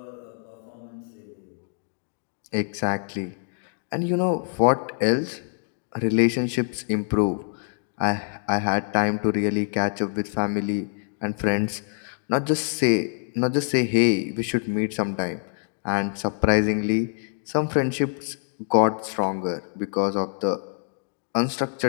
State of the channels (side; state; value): right; silent; digital silence